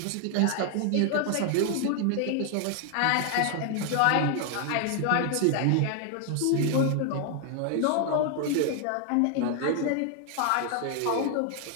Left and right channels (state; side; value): different; both; correlation 0.00